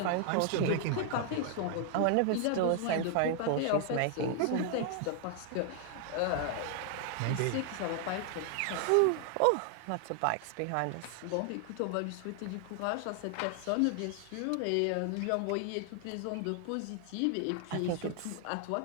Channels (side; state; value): both; different; correlation 0.00